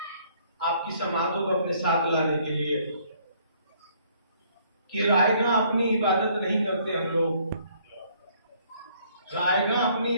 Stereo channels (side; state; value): both; inverted; correlation -0.63